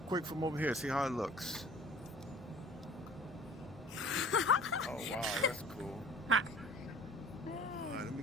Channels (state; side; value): normal; both; correlation 0.47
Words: from over here. See how it looks. Oh wow, that's cool. All right, let me